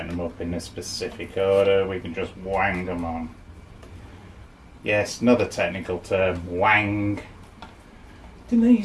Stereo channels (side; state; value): both; identical; correlation 1.00